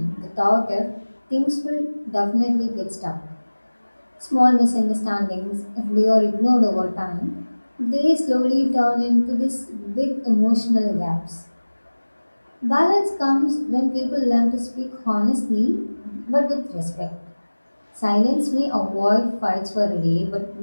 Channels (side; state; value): both; inverted; correlation -1.00